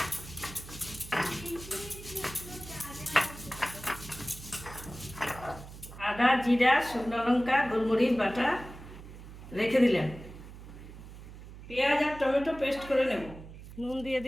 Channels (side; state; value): right; noise; hum, 15 dB below the sound